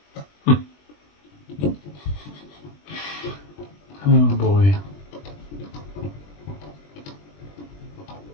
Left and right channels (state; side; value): late; right; 20 ms